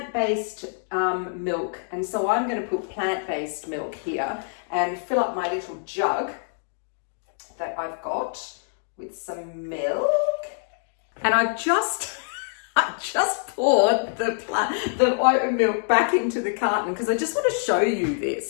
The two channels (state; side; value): silent; right; digital silence